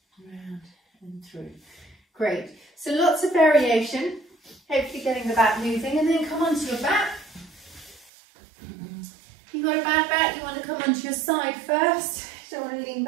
Round and through. Great. So lots of variation. Hopefully getting the back moving, and then come onto your back. If you've got a bad back, you want to come onto your side first. Don't want to lean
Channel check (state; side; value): drops out; left; at 8.1 s